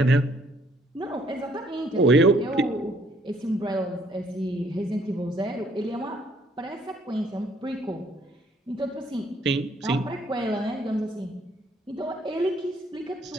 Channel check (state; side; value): normal; both; correlation 0.64